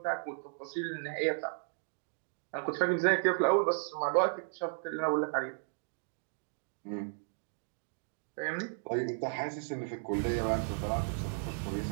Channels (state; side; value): silent; left; digital silence